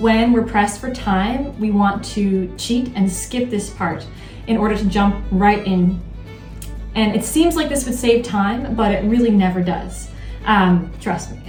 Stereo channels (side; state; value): both; identical; correlation 1.00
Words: we're pressed for time, we want to cheat and skip this part in order to jump right in. And it seems like this would save time, but it really never does. Trust